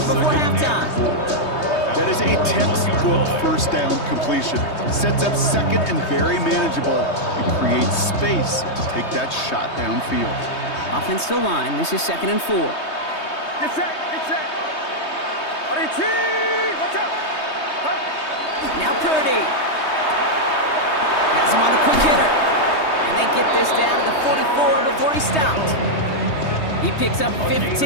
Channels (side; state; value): right; late; 3.2 ms